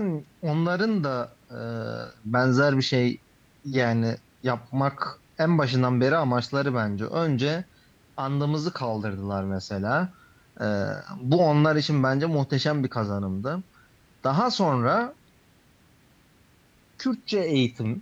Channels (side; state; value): both; identical; correlation 1.00